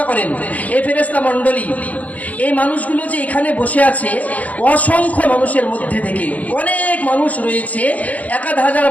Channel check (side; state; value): right; late; 0.073 ms